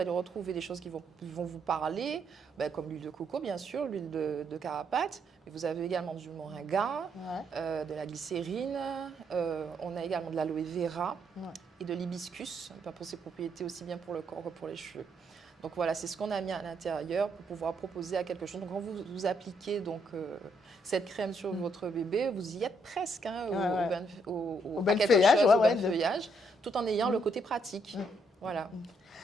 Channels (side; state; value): both; normal; correlation 0.74